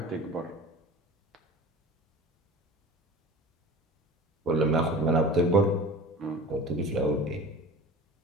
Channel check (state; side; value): normal; both; correlation 0.36